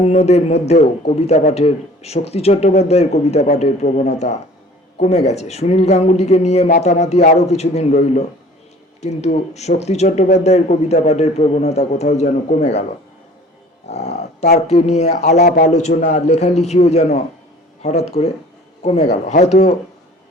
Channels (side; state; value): both; normal; correlation 0.48